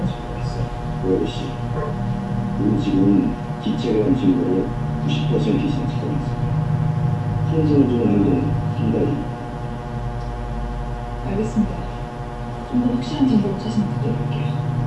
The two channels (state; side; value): identical; both; correlation 1.00